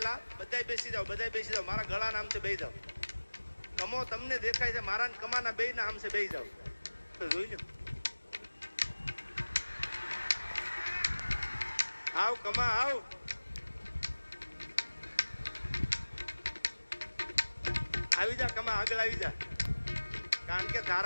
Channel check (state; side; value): inverted; both; correlation -1.00